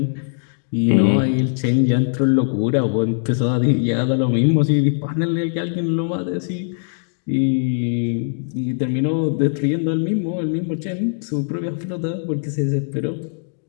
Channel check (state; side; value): silent; right; digital silence